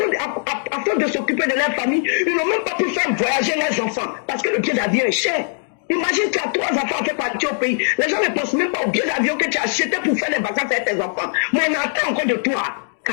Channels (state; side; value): silent; right; 65 dB below the other